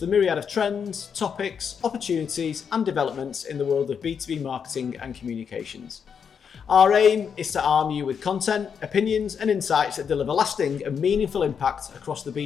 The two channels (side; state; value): right; quieter; 6.9 dB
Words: myriad of trends, topics, opportunities, and developments in the world of B2B marketing and communications. Our aim is to arm you with content, opinions, and insights that deliver lasting and meaningful impact across the